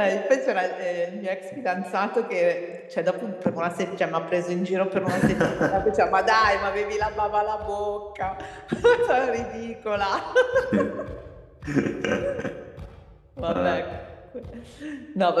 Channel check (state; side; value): identical; both; correlation 1.00